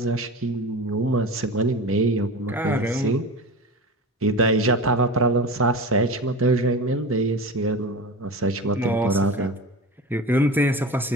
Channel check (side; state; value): both; normal; correlation 0.29